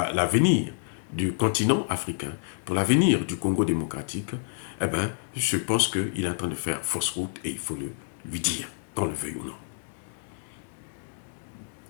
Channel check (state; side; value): silent; right; 59 dB below the other